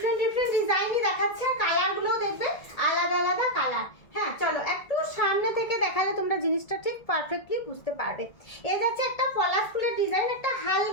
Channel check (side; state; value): right; late; 1.7 ms